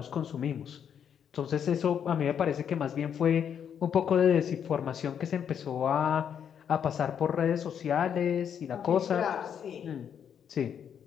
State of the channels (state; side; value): quieter; right; 8.3 dB